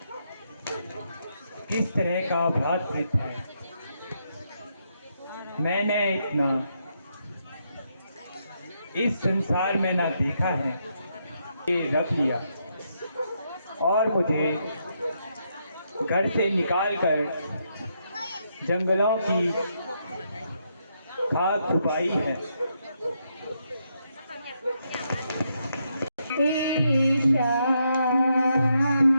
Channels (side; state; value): both; inverted; correlation -0.79